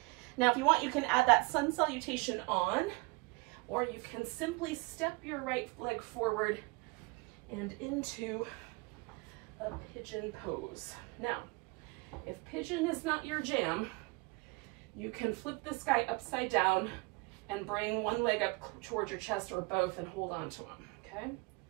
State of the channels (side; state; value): left; quieter; 26.9 dB